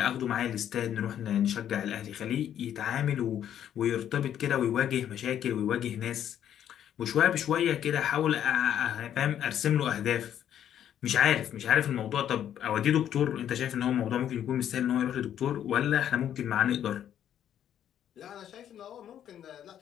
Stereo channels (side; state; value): right; quieter; 10.2 dB